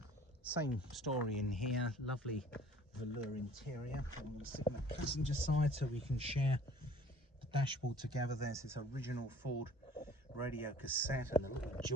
Same story in here, lovely velour interior. I'm going to sit on the passenger side so we can share the dashboard together. There's this original Ford radio cassette and a little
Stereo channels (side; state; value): both; normal; correlation 0.50